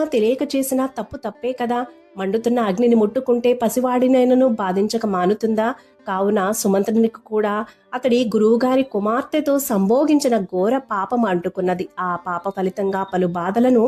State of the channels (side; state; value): both; identical; correlation 1.00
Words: తెలియక చేసినా తప్పు తప్పే కదా. మండుతున్న అగ్నిని ముట్టుకుంటే పసివాడినైనను బాధించక మానుతుందా? కావున సుమంత్రునికి కూడా అతడి గురువుగారి కుమార్తెతో సంభోగించిన ఘోర పాపం అంటుకున్నది. ఆ పాప ఫలితంగా పలు బాధలను